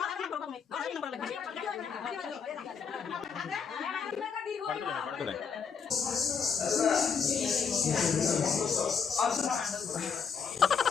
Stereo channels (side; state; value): right; quieter; 6.3 dB